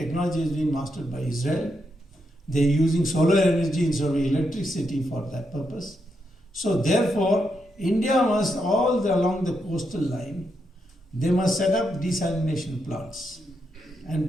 is being mastered by Israel. They're using solar energy instead of electricity for that purpose. So therefore, India must, all along the coastal line, they must set up desalination plants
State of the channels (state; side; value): normal; both; correlation 0.82